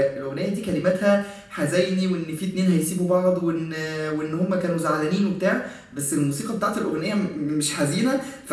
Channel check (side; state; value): both; identical; correlation 1.00